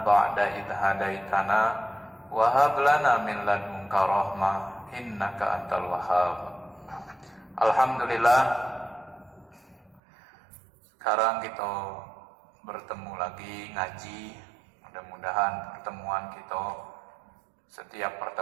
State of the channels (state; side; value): drops out; left; at 10.0 s